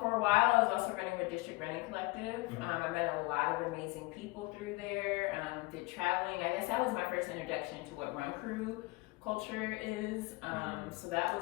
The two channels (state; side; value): quieter; right; 23.4 dB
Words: for a while I was also running with District Running Collective. I met a lot of amazing people through there, did traveling. I guess that was my first introduction to what run crew culture is. So that